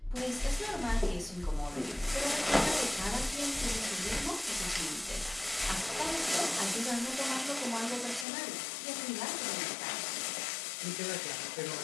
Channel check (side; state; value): right; drops out; at 8.2 s